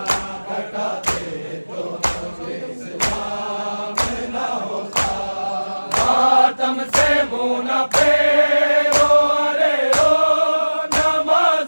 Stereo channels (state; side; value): inverted; both; correlation -1.00